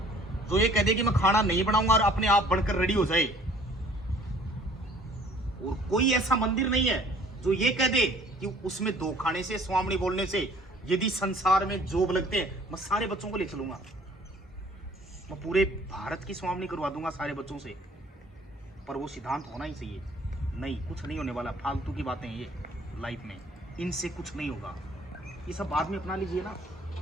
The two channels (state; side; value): normal; both; correlation 0.55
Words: जो ये कह दे कि मैं खाना नहीं बनाऊंगा और अपने आप बनकर रेडी हो जाए। और कोई ऐसा मंदिर नहीं है जो ये कह दे कि उसमें दो खाने से, स्वामी बोलने से, यदि संसार में जॉब लगते हैं मैं सारे बच्चों को ले चलूंगा, मैं पूरे भारत की स्वामी करवा दूंगा सारे बच्चों से। पर वो सिद्धांत होना ही चाहिए। नहीं, कुछ नहीं होने वाला, फालतू की बातें ये लाइफ में, इनसे कुछ नहीं होगा। ये सब बाद में अपना लीजिए ना,